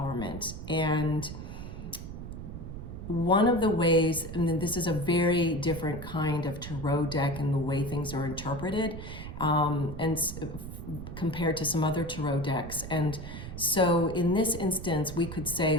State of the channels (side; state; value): right; noise; rumble, 9 dB below the sound